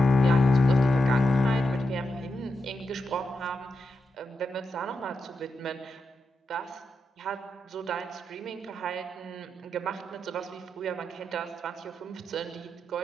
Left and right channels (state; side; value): normal; both; correlation 0.86